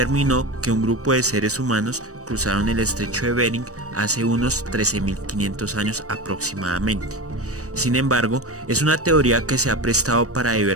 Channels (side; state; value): left; late; 0.66 ms